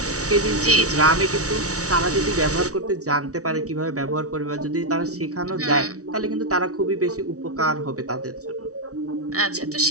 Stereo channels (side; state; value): left; late; 0.66 ms